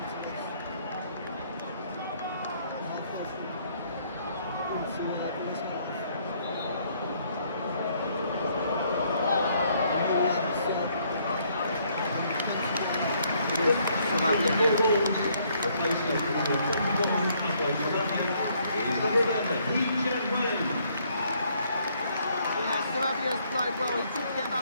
Sarabia's played well. He did get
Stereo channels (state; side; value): inverted; both; correlation -0.67